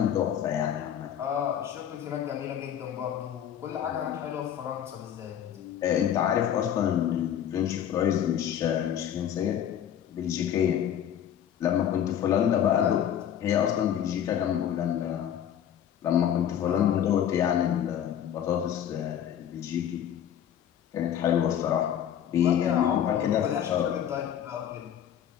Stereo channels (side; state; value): right; quieter; 9.8 dB